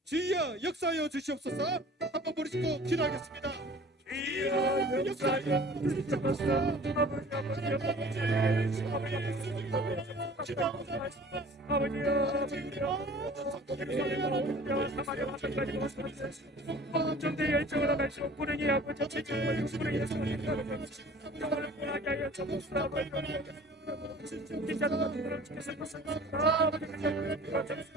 주여 역사하여 주시옵소서 한번 부르시고 기도하겠습니다. 주여 역사하여 주시옵소서.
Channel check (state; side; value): normal; both; correlation 0.47